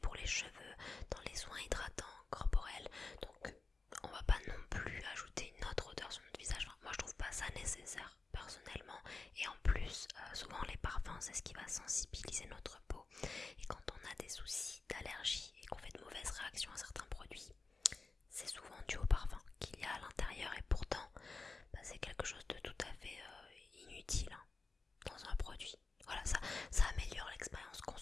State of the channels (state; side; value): quieter; right; 3.9 dB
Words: les cheveux, dans les soins hydratants corporels. Donc on va pas non plus ajouter une autre odeur sur notre visage. Enfin, moi je trouve pas ça nécessaire personnellement. Et en plus, souvent les parfums, c'est ce qui va sensibiliser notre peau. Et quand on a des soucis d'allergie et qu'on fait de mauvaises réactions à certains produits, c'est souvent dû au parfum qu'il y a à l'intérieur. Et pourtant, c'est quelque chose de tout à fait inutile dans un produit. Voilà, ça améliore l'expérience